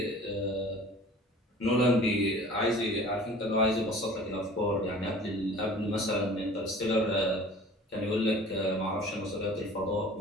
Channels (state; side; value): normal; both; correlation 0.45